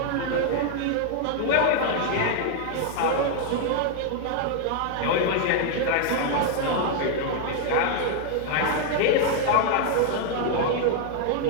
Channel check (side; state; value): both; different; correlation 0.00